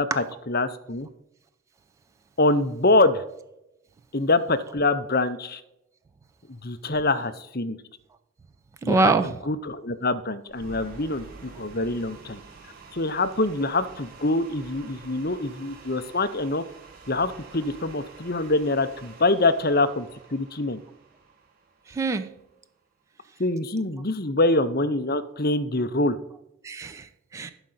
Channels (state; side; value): normal; both; correlation -0.04